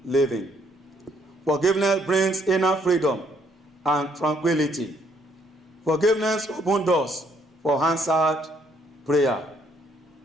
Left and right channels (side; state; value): both; normal; correlation 0.68